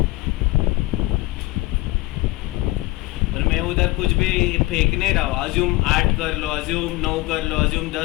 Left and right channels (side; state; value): right; quieter; 20.2 dB